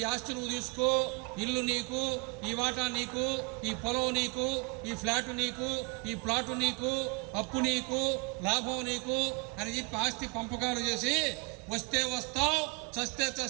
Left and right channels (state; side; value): quieter; left; 30.5 dB